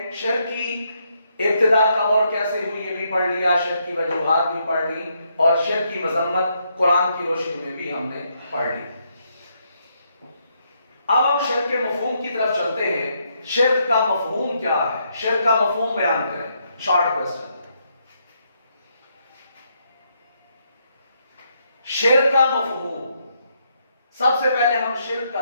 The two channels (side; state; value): both; inverted; correlation -0.76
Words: شرک کی ابتدا کب اور کیسے ہوئی یہ بھی پڑھ لیا, شرک کی وجوہات بھی پڑھ لی, اور شرک کی مذمت قرآن کی روشنی میں بھی ہم نے پڑھ لی. اب ہم شرک کے مفہوم کی طرف چلتے ہیں. شرک کا مفہوم کیا ہے؟ شرک کا مفہوم بیان کریں. Short question. شرک کا مفہوم. سب سے پہلے ہم شرک کا